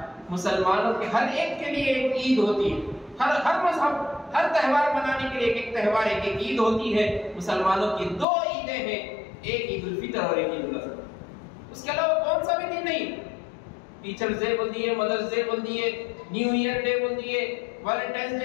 مسلمانوں کے ہر ایک کے لیے ایک عید ہوتی ہے، ہر مذہب، ہر تہوار منانے کے لیے ایک تہوار، ایک عید ہوتی ہے۔ مسلمانوں کی 2 عیدیں ہیں، ایک عید الفطر اور ایک عید الاضحیٰ، اس کے علاوہ کون سا بھی دن نہیں۔ ٹیچرز ڈے بول دیے، مدرس ڈے بول دیے، نیو ایئر ڈے بول دیے، ویلنٹائنس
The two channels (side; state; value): right; drops out; at 8.2 s